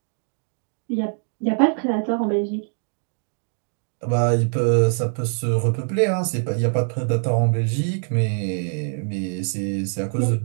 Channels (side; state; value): left; silent; 61 dB below the other